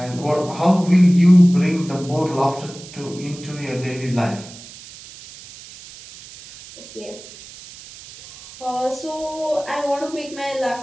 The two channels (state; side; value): noise; right; hiss, 17 dB below the sound